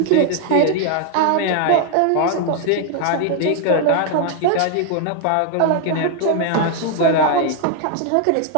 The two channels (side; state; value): both; different; correlation 0.00